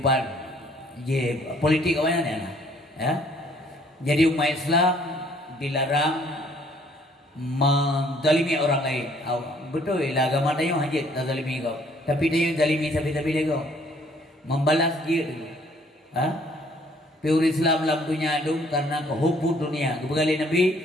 politik awalnya ya. Jadi umat Islam dilarang menzalimi orang lain. Betul lah agama dia hajat tak zalimi kau. Tapi dia yang zalimi sampai dia kau. Membalas dia dulu. Pure Islam dalam dunia itu karena kehubung dunia. Kebegali Nabi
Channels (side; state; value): both; normal; correlation 0.61